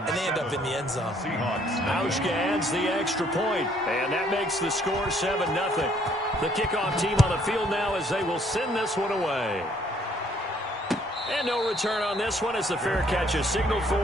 they end up in the end zone. Hauschka adds the extra point, and that makes the score 7-0. The kickoff team on the field now as they will send this one away. And no return on this one as the fair catch is signaled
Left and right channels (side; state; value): both; normal; correlation 0.64